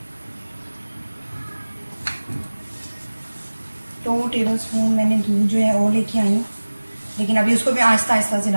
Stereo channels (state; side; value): inverted; both; correlation -1.00